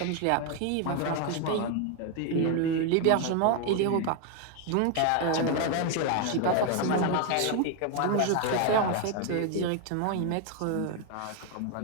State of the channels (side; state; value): both; different; correlation 0.01